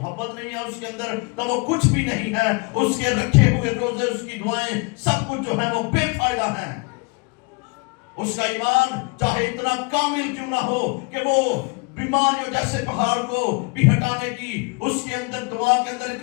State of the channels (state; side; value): quieter; right; 30.6 dB